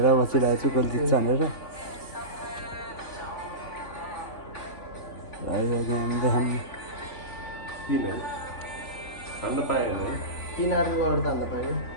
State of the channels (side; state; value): right; late; 3.8 ms